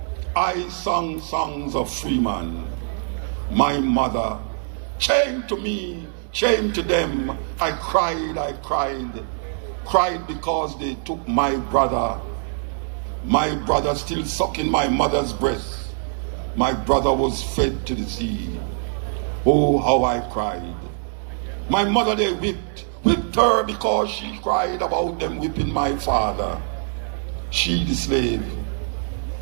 I sang songs of free man. My mother, chained to me, chained to them, I cried because they took my brother still sucking my mother's breast. My brother was fed to the sea. Oh, how I cried. My mother they whipped her because she cried about them whipping my father. She the slave,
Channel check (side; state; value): left; silent; digital silence